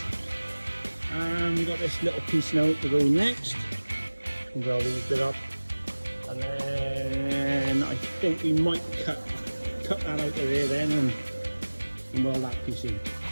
and we've got this little piece now to go next. We'll weld these bit up, and then I think we might cut that out of there then and weld that piece in.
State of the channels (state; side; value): inverted; both; correlation -1.00